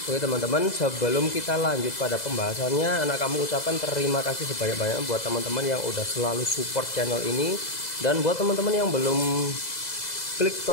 Oke teman-teman, sebelum kita lanjut pada pembahasannya, Anak Kampung ucapkan terima kasih sebanyak-banyak buat teman-teman yang udah selalu support channel ini. Dan buat teman-teman yang belum klik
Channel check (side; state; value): right; late; 2.0 ms